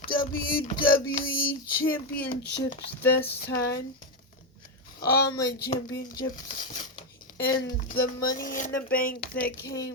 WWE Championships this time. all my championships and the money in the bank that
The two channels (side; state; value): both; normal; correlation 0.07